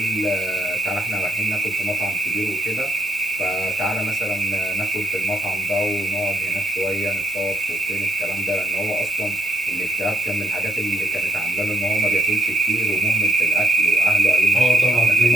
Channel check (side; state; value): both; normal; correlation 0.73